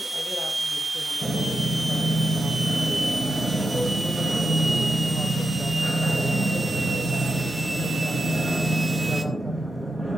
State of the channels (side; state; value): both; normal; correlation 0.88